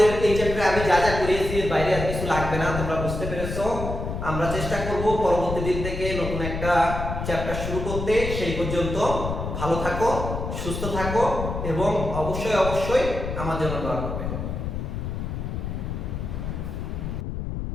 এই চ্যাপ্টারে আমি যা যা করিয়েছি এর বাইরে আর কিছু লাগবে না, তোমরা বুঝতে পেরেছো। আমরা চেষ্টা করব পরবর্তী দিন থেকে নতুন একটা চ্যাপ্টার শুরু করতে। সেই পর্যন্ত ভালো থাকো, সুস্থ থাকো এবং অবশ্যই অবশ্যই আমার জন্য দোয়া করবে।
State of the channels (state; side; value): noise; left; rumble, 4 dB below the sound